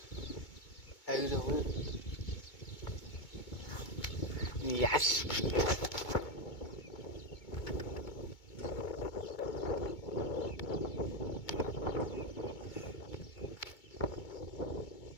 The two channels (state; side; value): late; right; 2.2 ms